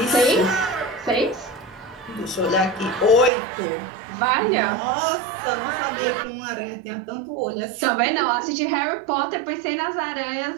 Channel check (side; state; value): left; drops out; at 3.3 s